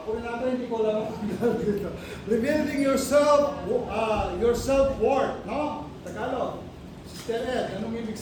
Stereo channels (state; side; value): identical; both; correlation 1.00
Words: rin natin, hindi ko alam ang dito. Rebuilding your self-worth, no? Tagalog. Sister Ed, anong ibig